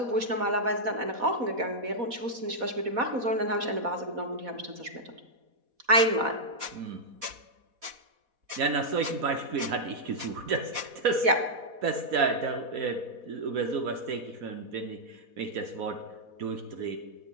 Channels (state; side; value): late; left; 4.1 ms